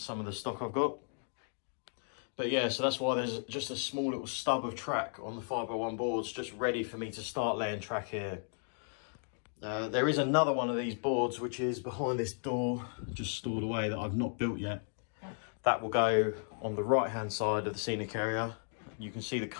of the stock I've got. But yeah, so that's why there's just a small little stub of track on the 5x1 boards, just ready for me to start laying track here. There is another one of these boards, which is behind this door, just stored away, that I've not built yet. That will go on the right-hand side of the scenic area. You can see the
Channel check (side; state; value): right; silent; 55 dB below the other